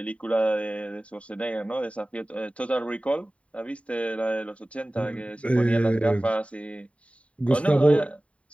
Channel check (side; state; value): right; late; 0.064 ms